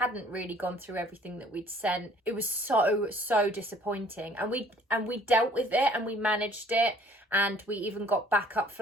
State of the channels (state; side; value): normal; both; correlation 0.55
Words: really gone through everything that we'd sent. It was so disappointing. And we dealt with it and we managed it. And we even got backup